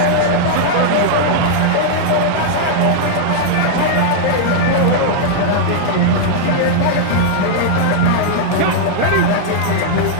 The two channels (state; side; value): different; both; correlation -0.01